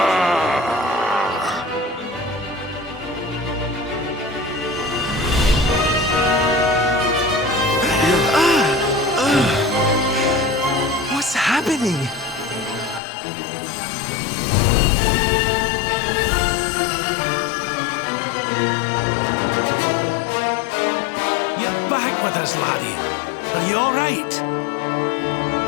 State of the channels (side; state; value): right; drops out; at 13.0 s